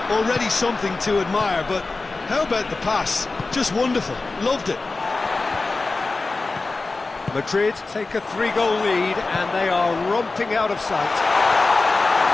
already something to admire, but how about the pass? Just wonderful. Loved it. Madrid take a 3-goal lead and they are romping out of sight.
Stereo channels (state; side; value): quieter; right; 3.6 dB